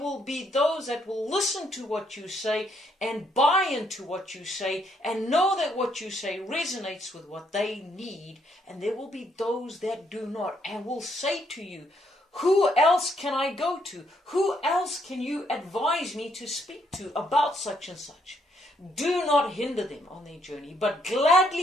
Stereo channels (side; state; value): both; normal; correlation 0.72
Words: be those that will listen to what you say and buy into what you say and know that what you say resonates with what they need. And there will be those that do not and will say to you, who else can I go to? Who else can you advise me to speak to about such and such? Do not hinder them on their journey, but